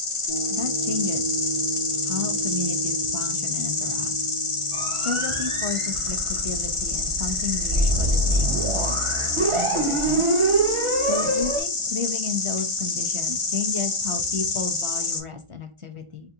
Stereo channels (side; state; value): left; late; 1.4 ms